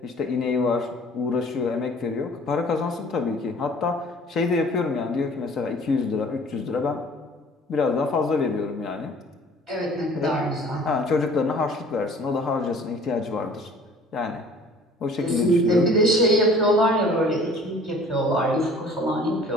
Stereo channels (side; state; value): both; normal; correlation 0.50